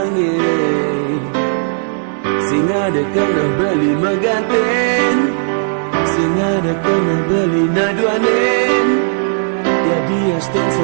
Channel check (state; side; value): silent; left; digital silence